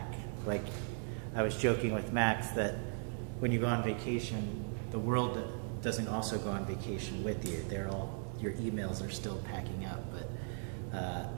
Like I was joking with Max that when you go on vacation, the world doesn't also go on vacation with you. Your emails are still packing up. But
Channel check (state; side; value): silent; left; 53 dB below the other